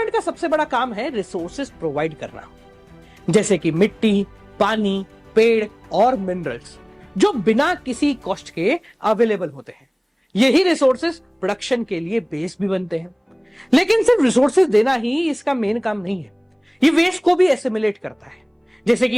का सबसे बड़ा काम है रिसोर्सेज प्रोवाइड करना, जैसे कि मिट्टी, पानी, पेड़ और मिनरल्स जो बिना किसी कॉस्ट के अवेलेबल होते हैं। यही रिसोर्सेज प्रोडक्शन के लिए बेस भी बनते हैं। लेकिन सिर्फ रिसोर्सेज देना ही इसका मेन काम नहीं है, ये वेस्ट को भी एसिमिलेट करता है, जैसे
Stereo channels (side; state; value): both; identical; correlation 1.00